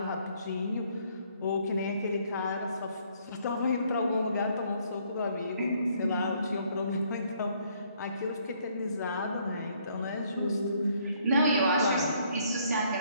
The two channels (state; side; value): inverted; both; correlation -0.66